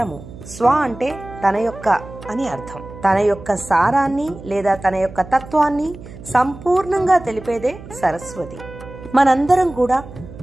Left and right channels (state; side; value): noise; right; hum, 16 dB below the sound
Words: స్వ అంటే తన యొక్క అని అర్థం. తన యొక్క సారాన్ని లేదా తన యొక్క తత్వాన్ని సంపూర్ణంగా తెలిపేదే సరస్వతి. మనందరం కూడా